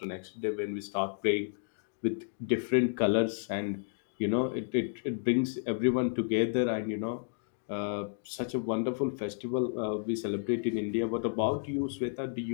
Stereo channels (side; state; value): right; silent; digital silence